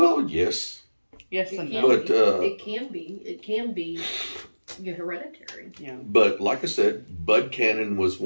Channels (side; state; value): both; inverted; correlation -1.00